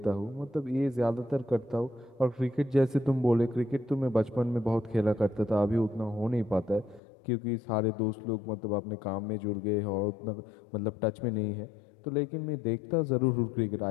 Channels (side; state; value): right; drops out; at 7.0 s